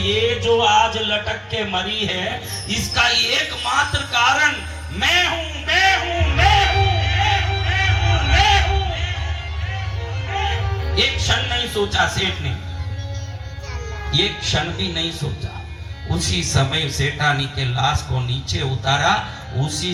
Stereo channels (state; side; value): identical; both; correlation 1.00